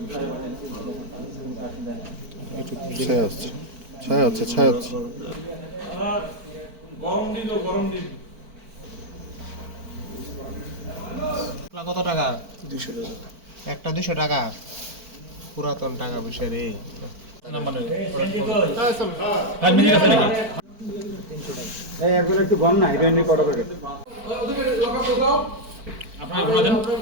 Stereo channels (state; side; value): late; left; 4.5 ms